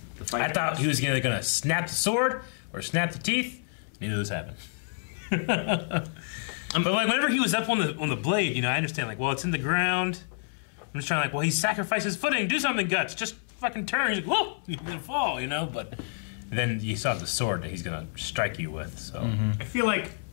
the fight. I thought he was either going to snap the sword or snap the teeth. Neither of those happened. But like whenever he was up on the blade, you know, I understand, like, well, it's in the ground. I'm just trying, like, well, he sacrificed his footing. Do something, Guts. Just fucking turn. He's like, whoa, he's gonna fall, you know. But then you saw the sword that he's gonna strike you with. So I feel like.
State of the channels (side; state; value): right; silent; 59 dB below the other